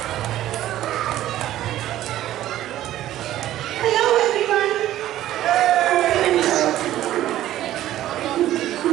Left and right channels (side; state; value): left; quieter; 13.5 dB